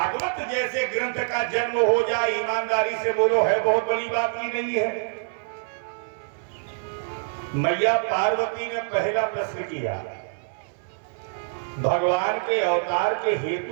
जैसे ग्रंथ का जन्म हो जाए, ईमानदारी से बोलो, है बहुत बड़ी बात की नहीं है? मैया पार्वती ने पहला प्रश्न किया, भगवान के अवतार के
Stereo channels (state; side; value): silent; left; 57 dB below the other